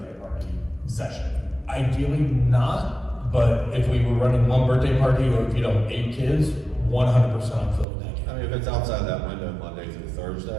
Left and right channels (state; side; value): drops out; left; at 7.9 s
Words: party session? Ideally not, but if we were running 1 birthday party of 8 kids, 100% I'm filling that game. I mean, if it's outside that window Monday through